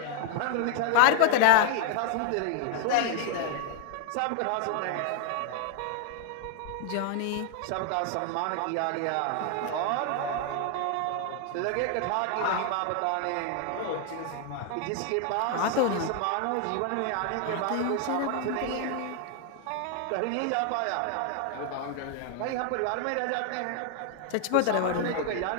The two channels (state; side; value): different; both; correlation 0.00